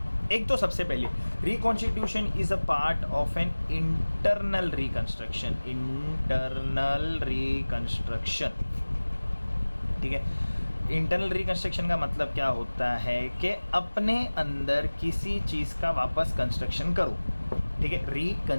एक तो सबसे पहले, reconstitution is a part of an internal reconstruction. ठीक है। इंटरनल रिकन्स्ट्रक्शन का मतलब क्या होता है कि अपने अंदर किसी चीज़ का वापस कंस्ट्रक्शन करो। ठीक है,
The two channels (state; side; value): inverted; both; correlation -1.00